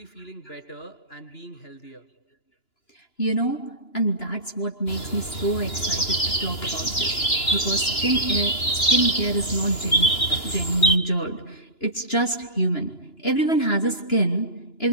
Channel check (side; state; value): right; late; 2.9 ms